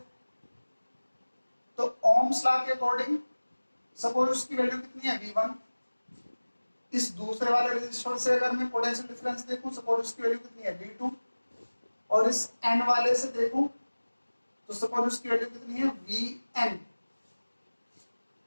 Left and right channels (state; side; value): inverted; both; correlation -1.00